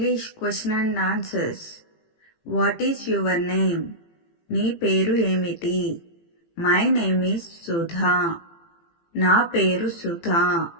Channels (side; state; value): right; late; 18 ms